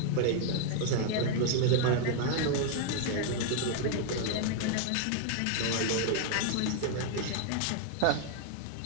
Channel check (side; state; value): both; different; correlation 0.00